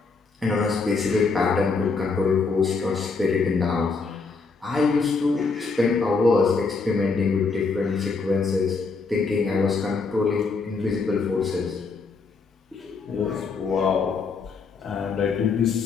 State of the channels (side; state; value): right; quieter; 4.5 dB